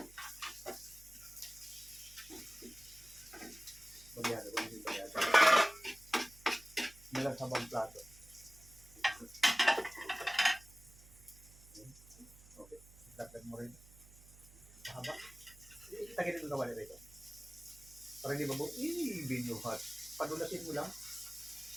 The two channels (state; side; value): noise; right; hum, 21 dB below the sound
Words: Bagyado, hindi bagyado. Nilang sabang plato. Okay. Dagdag mo rin. Mahaba. Tagilid mo kawali rito. Para hindi mabuo. Binuhat. Padulasin mo lang.